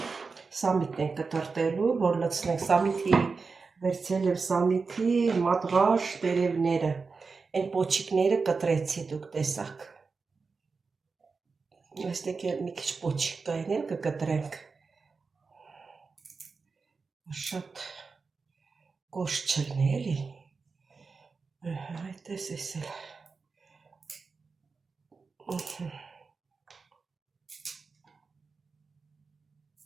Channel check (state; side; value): quieter; left; 4.6 dB